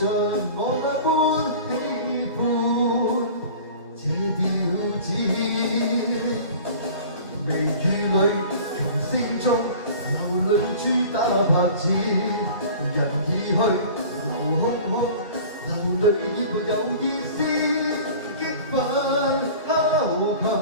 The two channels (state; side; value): inverted; both; correlation -0.42